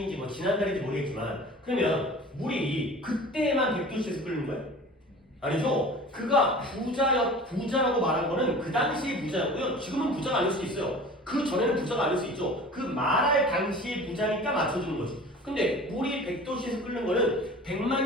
뭐 지난달인지 모르겠지만 그러면 물이 그때만 100도씨에서 끓는 거예요? 아니죠. 그가 부자라고 말한 거는 그 당시의 부자였고요. 지금은 부자가 아닐 수 있어요. 그 전에는 부자가 아닐 수 있죠. 그 말할 당시의 부자니까 맞춰주는 거지. 근데 물이 100도씨에서 끓는 거는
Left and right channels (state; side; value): normal; both; correlation 0.41